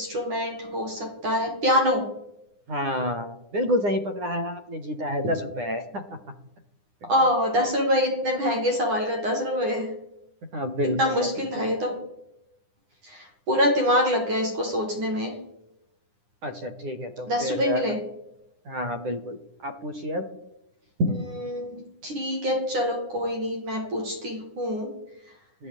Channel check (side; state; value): left; late; 9.9 ms